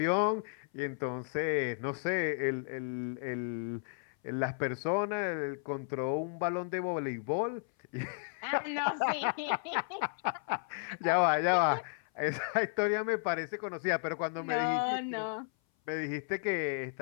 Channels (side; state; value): right; silent; 55 dB below the other